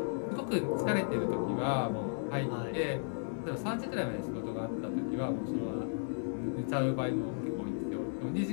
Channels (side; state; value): right; silent; 55 dB below the other